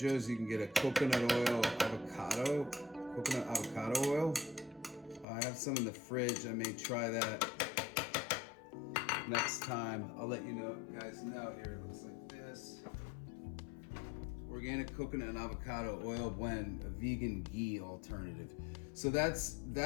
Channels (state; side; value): drops out; right; at 5.2 s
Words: you can get a coconut avocado oil. I have some in the fridge. I may try that next time. I'll let you guys know. Here it looks like this. Organic coconut and avocado oil blend, a vegan ghee alternative. So that's